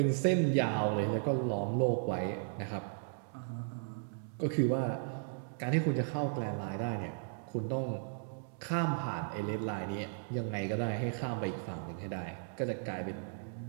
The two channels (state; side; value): silent; left; digital silence